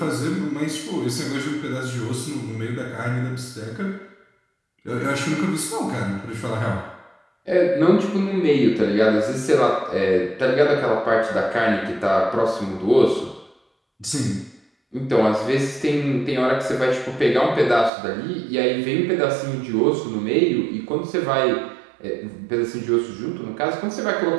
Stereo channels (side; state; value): left; drops out; at 17.9 s